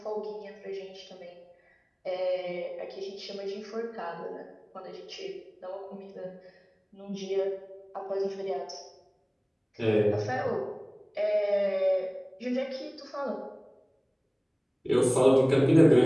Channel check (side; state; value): both; identical; correlation 1.00